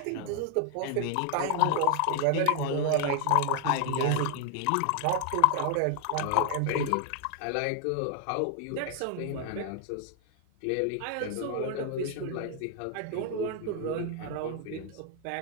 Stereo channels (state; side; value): different; both; correlation 0.00